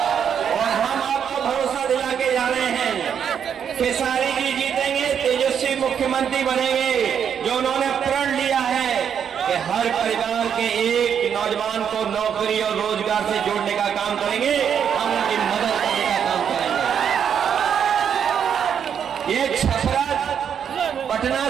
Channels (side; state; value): left; quieter; 8.0 dB